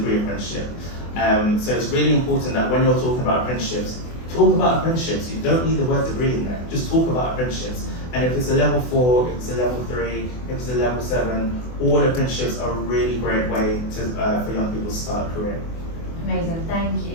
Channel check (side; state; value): right; late; 24 ms